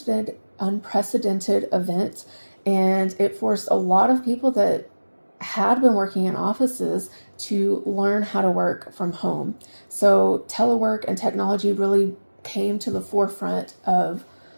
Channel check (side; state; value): both; inverted; correlation -1.00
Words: event, and it forced a lot of people that had been working in offices to learn how to work from home. So telework and technology really came to the forefront of